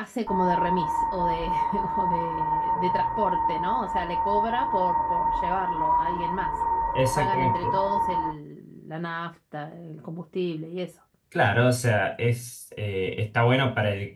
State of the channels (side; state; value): both; identical; correlation 1.00